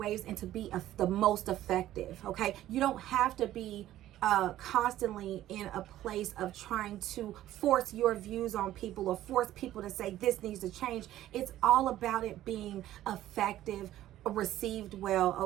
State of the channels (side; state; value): left; quieter; 13.6 dB